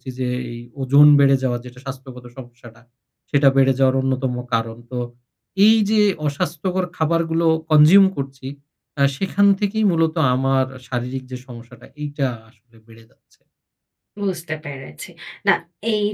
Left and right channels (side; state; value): both; identical; correlation 1.00